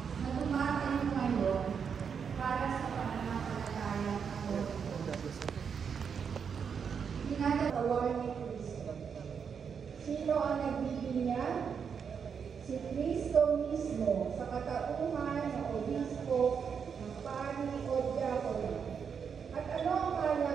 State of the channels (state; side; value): quieter; left; 6.7 dB